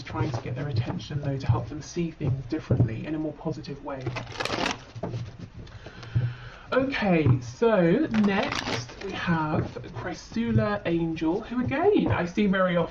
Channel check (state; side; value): identical; both; correlation 1.00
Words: trying to get their attention though, to help them see things differently in a more positive way. Okay, so next we have Chrysula Angel, who again I see very